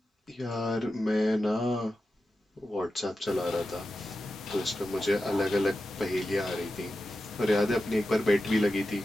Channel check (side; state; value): both; normal; correlation 0.92